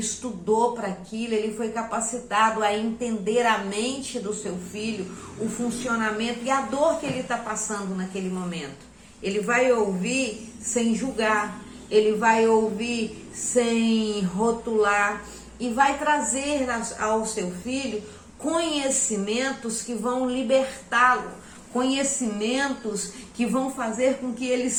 para aquilo, ele foi capacitado a entender a mente do seu filho, o funcionamento e a dor que ele está passando naquele momento. Ele vai ouvir sem julgar, ele vai ouvir sem rotular e vai trazer ao seu filho conhecimentos que vão libertá-lo, conhecimentos que vão fazer com que ele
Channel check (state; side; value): identical; both; correlation 1.00